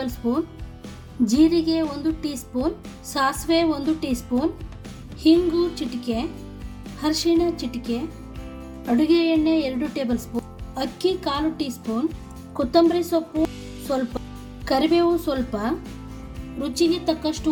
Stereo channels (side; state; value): both; identical; correlation 1.00